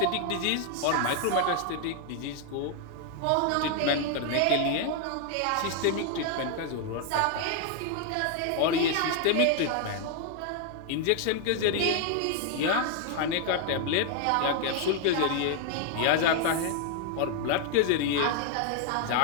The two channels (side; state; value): both; different; correlation 0.00